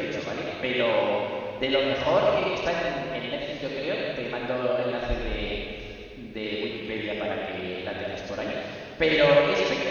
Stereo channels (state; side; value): identical; both; correlation 1.00